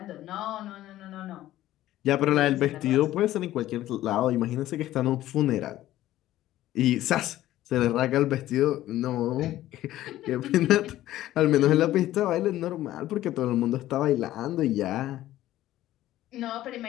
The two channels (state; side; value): quieter; right; 14.4 dB